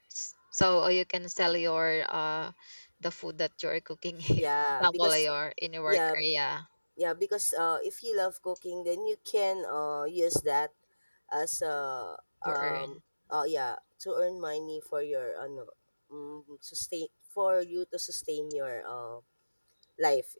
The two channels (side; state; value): both; inverted; correlation -1.00